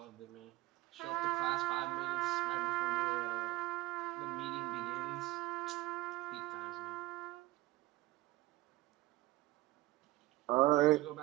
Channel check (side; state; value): left; quieter; 17.9 dB